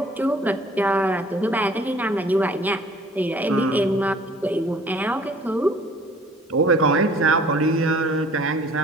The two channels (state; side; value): normal; both; correlation 0.53